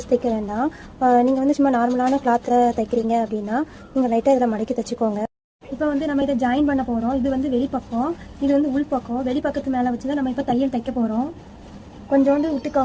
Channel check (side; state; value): both; identical; correlation 1.00